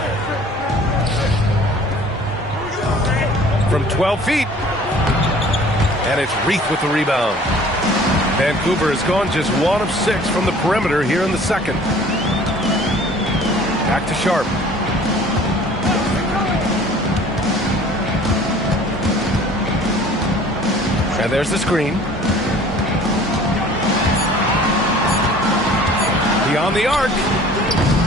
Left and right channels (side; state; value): both; normal; correlation 0.50